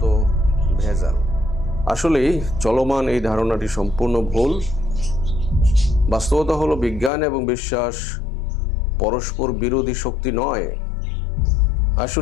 ভেজাল। আসলেই চলমান এই ধারণাটি সম্পূর্ণ ভুল। বাস্তবতা হলো বিজ্ঞান এবং বিশ্বাস পরস্পর বিরোধী শক্তি নয়,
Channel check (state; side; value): drops out; right; at 7.1 s